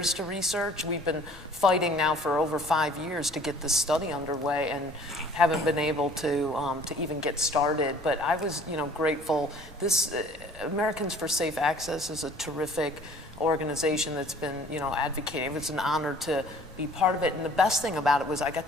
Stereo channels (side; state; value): both; normal; correlation 0.52